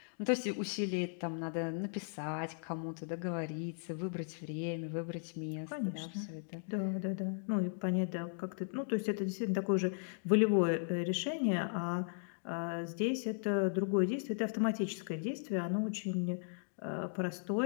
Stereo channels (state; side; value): silent; right; digital silence